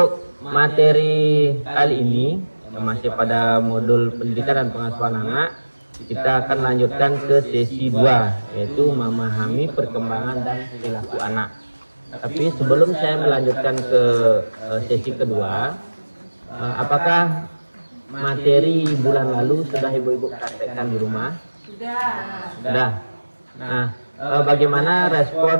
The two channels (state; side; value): inverted; both; correlation -1.00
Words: materi kali ini masih pada modul pendidikan dan pengasuhan anak, kita akan lanjutkan ke sesi 2, yaitu memahami perkembangan dan perilaku anak. Tapi sebelum saya melanjutkan ke sesi kedua, apakah materi bulan lalu sudah ibu-ibu praktekkan di rumah? Sudah. Nah, bagaimana